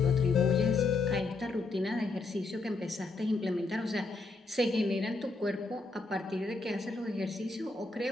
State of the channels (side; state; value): right; quieter; 3.6 dB